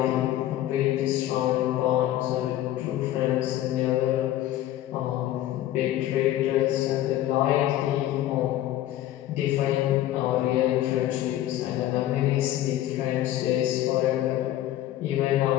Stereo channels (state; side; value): quieter; right; 13.5 dB